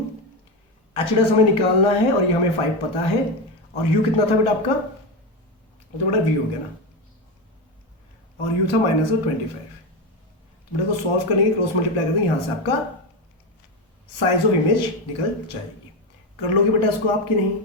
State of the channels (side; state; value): both; normal; correlation 0.14